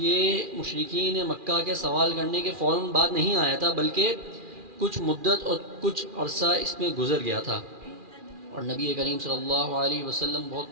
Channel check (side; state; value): left; late; 2.4 ms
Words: مشرکین مکہ کے سوال کرنے کے فوراً بعد نہیں آیا تھا، بلکہ کچھ مدت اور کچھ عرصہ اس میں گزر گیا تھا، اور نبی کریم صلی اللہ علیہ وسلم بہت